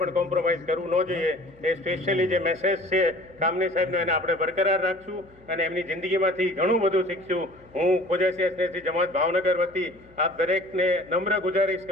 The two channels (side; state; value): left; noise; hum, 27 dB below the sound